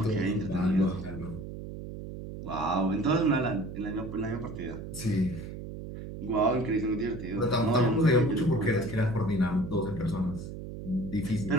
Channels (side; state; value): right; noise; hum, 9 dB below the sound